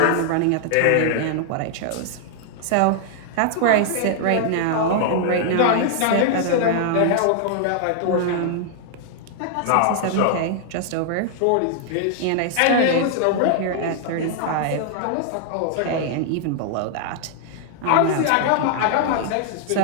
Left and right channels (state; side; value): different; both; correlation 0.00